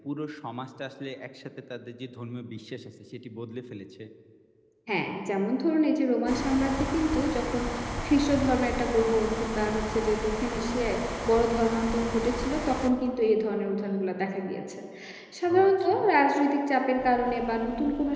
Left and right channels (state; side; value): identical; both; correlation 1.00